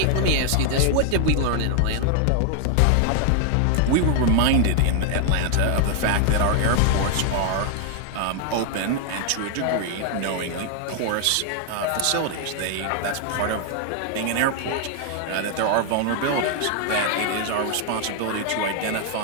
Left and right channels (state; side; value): different; both; correlation 0.00